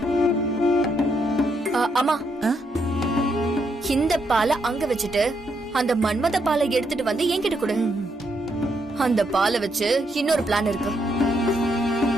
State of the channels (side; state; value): both; normal; correlation 0.77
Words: அம்மா, இந்த பாலை அங்க வச்சுட்டு அந்த மன்மத பாலை எடுத்துட்டு வந்து என்கிட்ட கொடு. அந்த பாலை வச்சு இன்னொரு பிளான் இருக்கு.